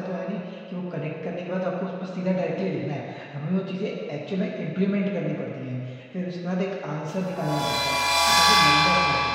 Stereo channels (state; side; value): identical; both; correlation 1.00